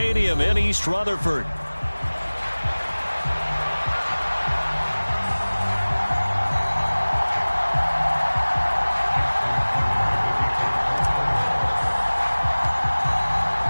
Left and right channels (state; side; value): inverted; both; correlation -1.00